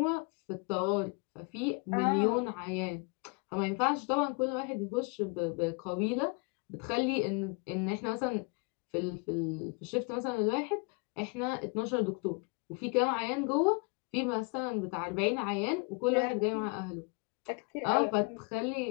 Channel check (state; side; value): quieter; right; 31.7 dB